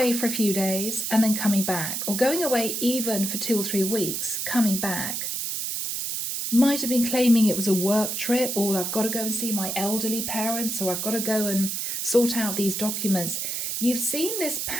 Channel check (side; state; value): right; noise; hiss, 2 dB below the sound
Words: for a few days and then coming back, or going away even for 2 or 3 weeks, coming back. Might have been claiming it was a work trip, or I've got to go and see my elderly parents, or I've got to go and sort out these documents. You've seen this